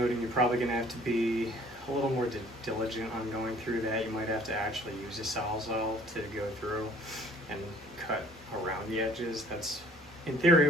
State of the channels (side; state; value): both; normal; correlation 0.55